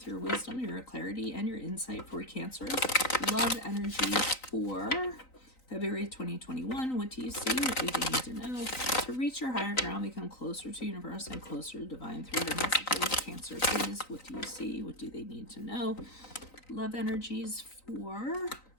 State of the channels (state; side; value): late; right; 3.9 ms